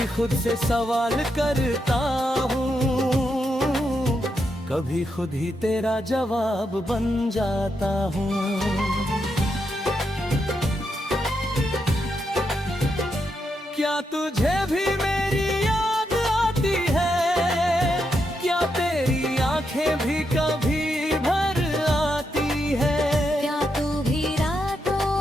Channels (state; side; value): normal; both; correlation 0.83